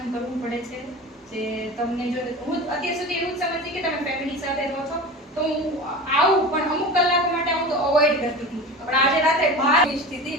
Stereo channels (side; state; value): both; normal; correlation 0.32